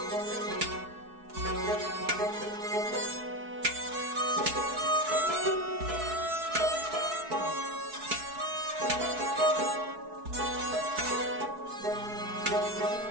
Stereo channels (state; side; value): late; left; 4.6 ms